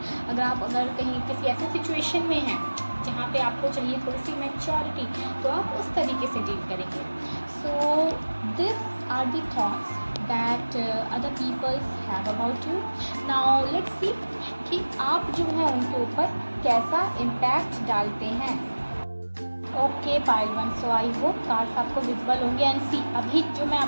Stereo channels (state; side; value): inverted; both; correlation -1.00